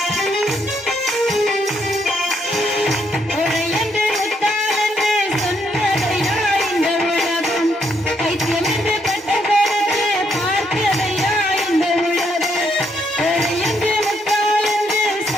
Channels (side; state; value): both; normal; correlation 0.74